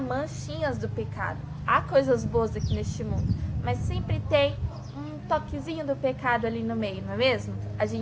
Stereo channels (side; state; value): both; identical; correlation 1.00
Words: do pecado. Há coisas boas aqui neste mundo, mas sempre tem um toquezinho do pecado ali no meio, não é mesmo? A